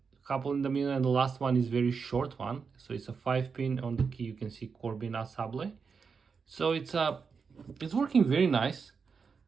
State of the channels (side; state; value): left; quieter; 5.5 dB